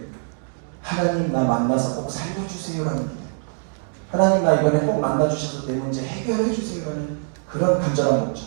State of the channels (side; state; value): left; silent; digital silence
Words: 하나님 나 만나서 꼭 살려주세요라는 기대. 하나님 나 이번에 꼭 만나주셔서 내 문제 해결해주세요라는 그런 간절한 목적.